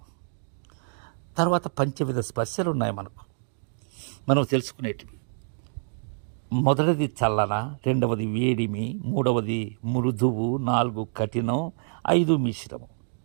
తర్వాత పంచవిధ స్పర్శలు ఉన్నాయి మనం తెలుసుకునేటివి. మొదటిది చల్లన, రెండవది వేడిమి, మూడవది మృదువు, 4 కఠినం, 5 మిశ్రమం.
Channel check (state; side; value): silent; left; digital silence